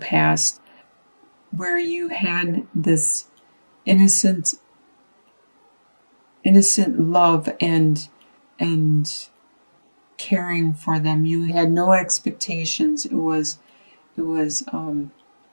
where you had this innocent love and caring for them. You had no expectations. It was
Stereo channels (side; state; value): both; inverted; correlation -1.00